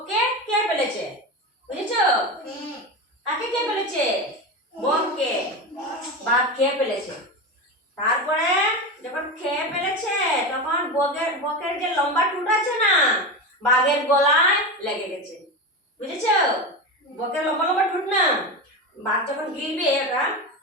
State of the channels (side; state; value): both; normal; correlation 0.20